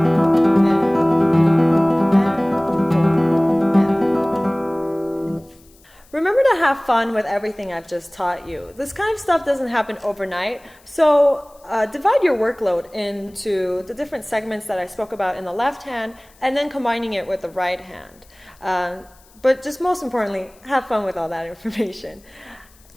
4, and. Remember to have fun with everything I've just taught you. This kind of stuff doesn't happen overnight, so divide your workload into the different segments that I spoke about in the left hand and then combining it with the right hand. But just most importantly, have fun with all that information.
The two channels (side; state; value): left; noise; hiss, 29 dB below the sound